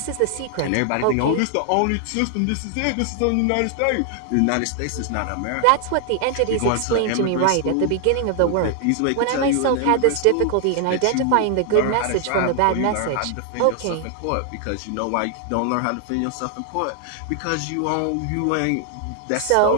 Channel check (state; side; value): different; both; correlation 0.00